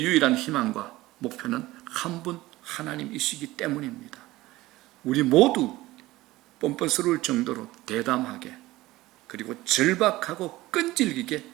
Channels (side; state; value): left; quieter; 18.1 dB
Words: 유일한 희망과 목표는 한 분 하나님이시기 때문입니다. 우리 모두 뻔뻔스러울 정도로 대담하게 그리고 절박하고 끈질기게